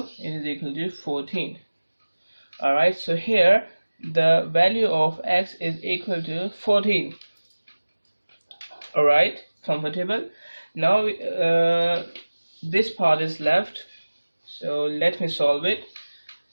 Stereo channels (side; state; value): both; inverted; correlation -1.00